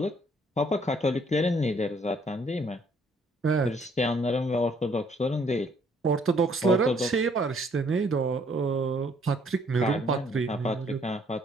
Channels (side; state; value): both; normal; correlation 0.64